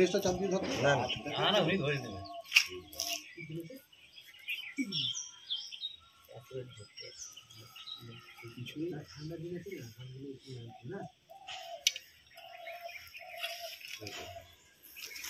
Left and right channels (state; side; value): identical; both; correlation 1.00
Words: লিস্টটা চাপ দিয়ে ধরতো। না না উনি ধরে দেবে।